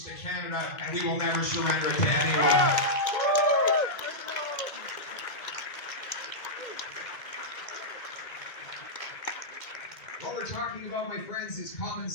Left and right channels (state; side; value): late; right; 1.9 ms